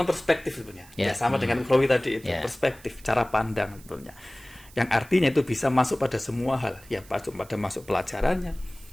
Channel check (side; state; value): right; noise; hiss, 23 dB below the sound